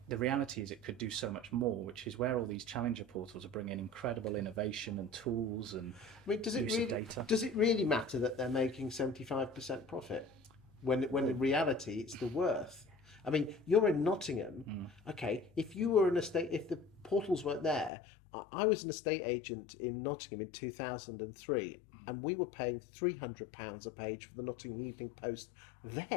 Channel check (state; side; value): drops out; right; at 17.9 s